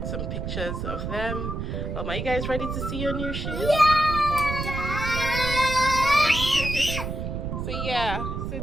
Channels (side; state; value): right; noise; rumble, 4 dB below the sound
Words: some pictures of them. Are you guys ready to see your new shoes? Yeah! So